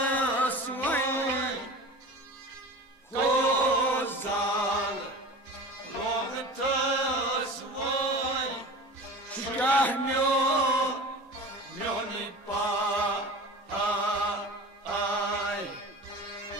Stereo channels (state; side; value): normal; both; correlation 0.35